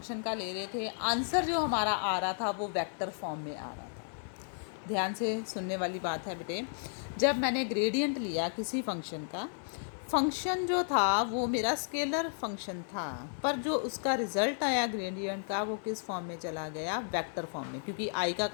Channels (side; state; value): right; silent; digital silence